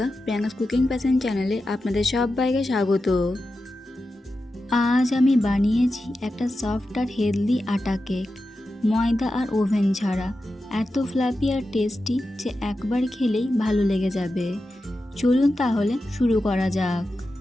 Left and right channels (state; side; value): normal; both; correlation 0.91